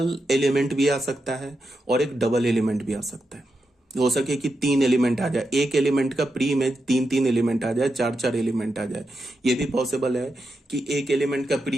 एलिमेंट भी आ सकता है और एक डबल एलिमेंट भी आ सकता है। हो सके कि 3 एलिमेंट आ जाए, एक एलिमेंट का प्री इमेज 3 एलिमेंट आ जाए, 4 एलिमेंट आ जाए। ये भी पॉसिबल है कि एक एलिमेंट का प्री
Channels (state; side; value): normal; both; correlation 0.87